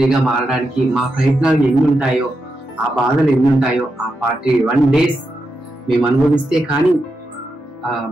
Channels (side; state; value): both; normal; correlation 0.86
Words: మారడానికి మా ప్రయత్నాలు ఎన్ని ఉంటాయో, ఆ బాధలు ఎన్ని ఉంటాయో, ఆ 41 days మేము అనుభవిస్తే కానీ